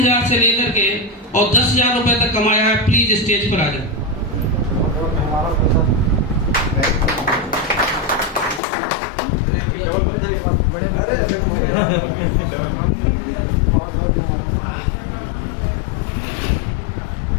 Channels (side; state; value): right; drops out; at 8.6 s